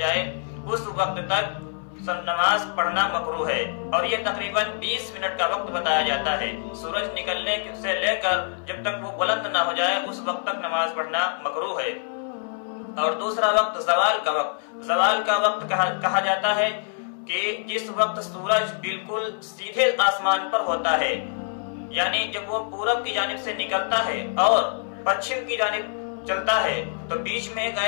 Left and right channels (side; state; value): right; silent; 59 dB below the other